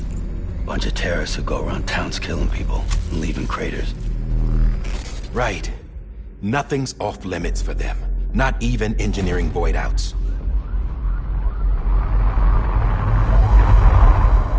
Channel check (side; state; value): both; identical; correlation 1.00